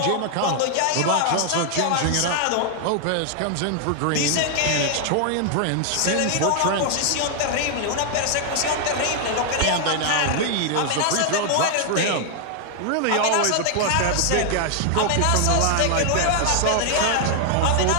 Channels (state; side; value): different; both; correlation 0.00